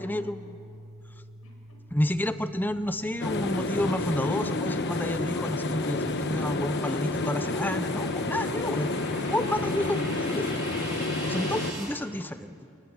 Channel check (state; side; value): normal; both; correlation 0.59